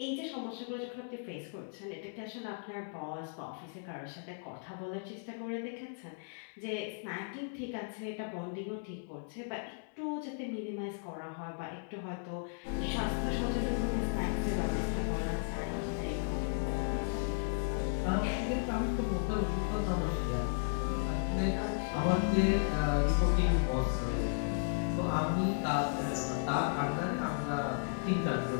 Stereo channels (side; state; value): right; silent; digital silence